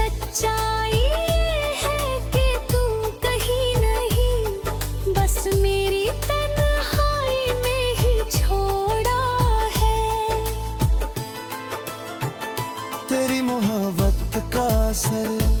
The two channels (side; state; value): both; identical; correlation 1.00